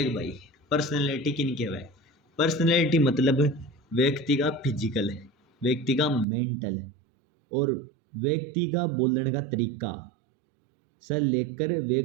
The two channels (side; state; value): left; drops out; at 6.2 s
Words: भाई, पर्सनैलिटी किन के है? पर्सनैलिटी मतलब व्यक्ति का फिजिकल, व्यक्ति का मेंटल और व्यक्ति का बोलने का तरीका से लेकर